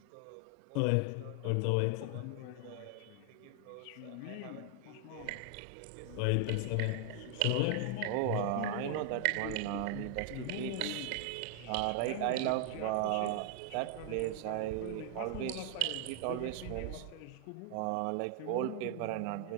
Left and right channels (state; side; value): different; both; correlation 0.00